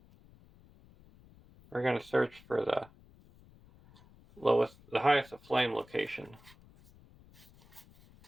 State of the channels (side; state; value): left; noise; rumble, 25 dB below the sound